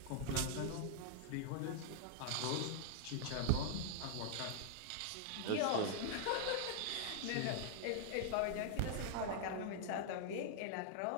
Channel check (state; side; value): different; both; correlation -0.01